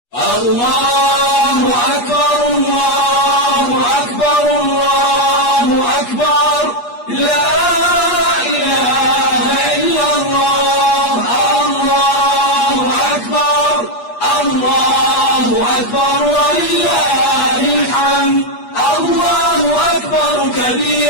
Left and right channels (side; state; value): right; late; 8.4 ms